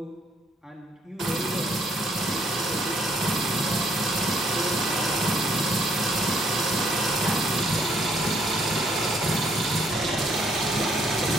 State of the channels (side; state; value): both; normal; correlation 0.67